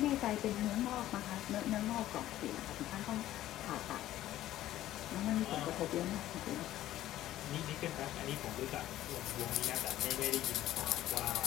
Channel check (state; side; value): quieter; right; 13.9 dB